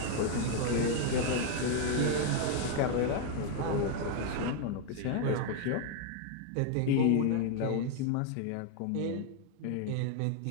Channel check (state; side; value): different; both; correlation 0.01